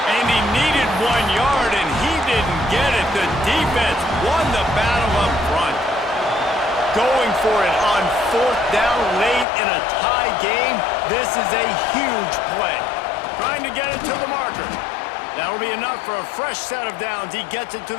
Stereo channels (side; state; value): right; drops out; at 9.5 s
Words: And he needed 1 yard, and he didn't get it. The defense won the battle up front. Going for it on 4th down late in a tie game. This is a huge play. Trying to get it to the marker. That'll be enough for a fresh set of downs. He gets it to